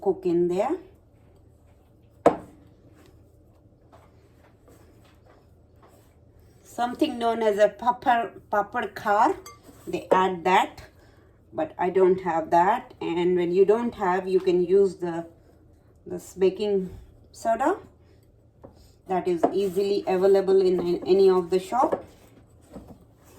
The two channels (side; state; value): both; identical; correlation 1.00